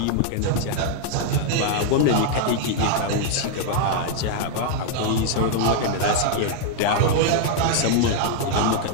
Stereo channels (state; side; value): different; both; correlation 0.00